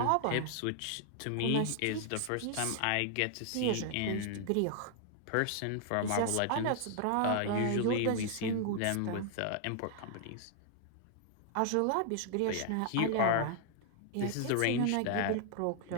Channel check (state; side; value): different; both; correlation 0.00